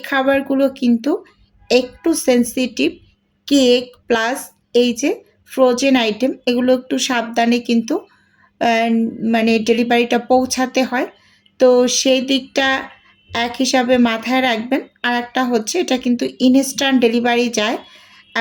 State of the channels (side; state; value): both; identical; correlation 1.00